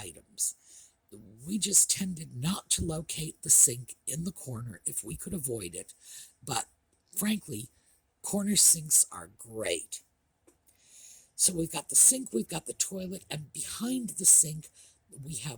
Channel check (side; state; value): both; identical; correlation 1.00